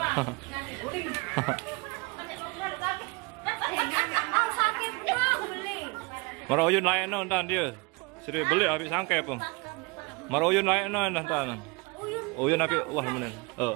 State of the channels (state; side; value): quieter; left; 27.8 dB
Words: Oh, sakit benar beli. Marah uyun lain no entan dia. Seri beli habis sangkai pun. Marah uyun lain no entan. Uyun habis wah menen.